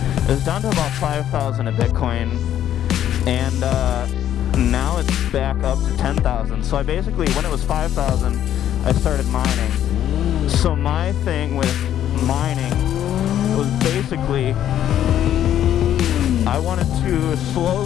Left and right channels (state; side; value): quieter; right; 11.0 dB